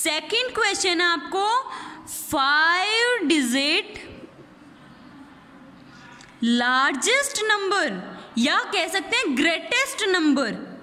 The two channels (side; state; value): both; identical; correlation 1.00